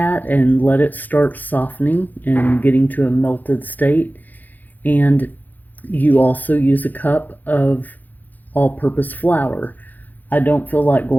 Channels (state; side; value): late; right; 0.084 ms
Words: and let it start softening and getting to a melted state. And you also use a cup of all-purpose flour. I don't feel like